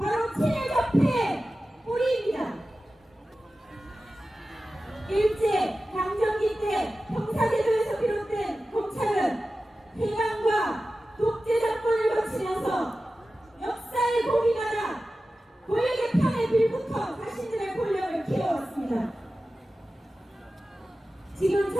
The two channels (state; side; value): normal; both; correlation 0.94